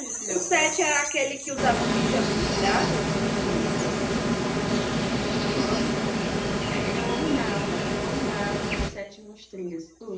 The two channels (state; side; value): identical; both; correlation 1.00